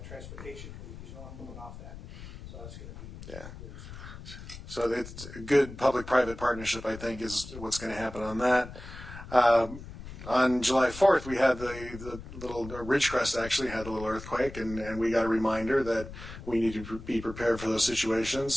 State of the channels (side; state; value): left; noise; rumble, 13 dB below the sound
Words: transportation because you know I'm moving off that. So that's going to be... Yeah. So it's a good public-private partnership, I think, is what's going to happen on that. On July 4th, we had the little Ridgecrest actually had a little earthquake, and we got a reminder that we need to be prepared for those